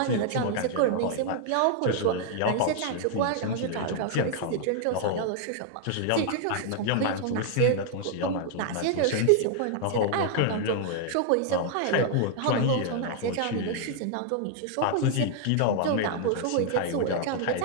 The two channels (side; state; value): both; different; correlation 0.00